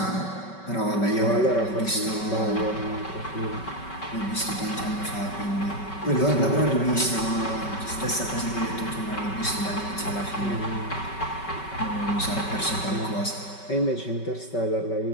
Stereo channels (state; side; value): late; right; 5.3 ms